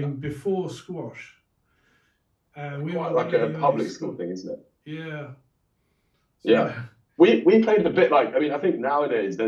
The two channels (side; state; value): both; identical; correlation 1.00